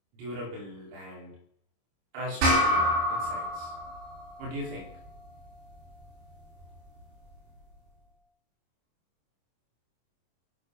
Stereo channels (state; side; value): late; left; 25 ms